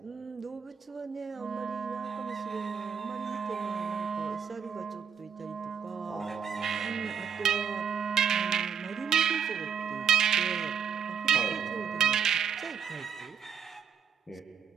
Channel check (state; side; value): quieter; left; 7.1 dB